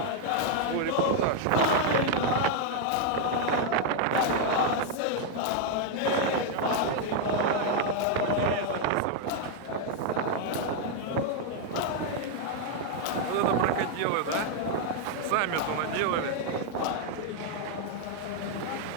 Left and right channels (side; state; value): both; different; correlation 0.00